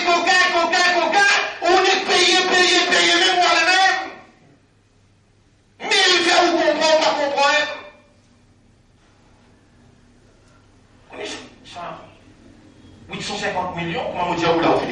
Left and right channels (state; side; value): identical; both; correlation 1.00